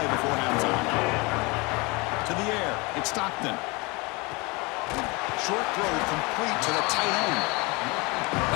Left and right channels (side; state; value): right; quieter; 26.6 dB